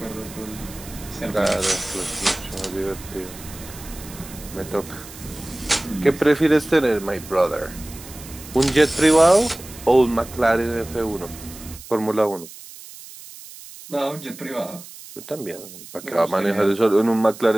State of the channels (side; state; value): right; noise; hiss, 16 dB below the sound